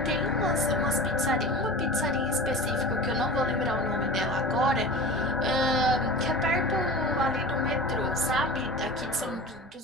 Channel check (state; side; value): normal; both; correlation 0.35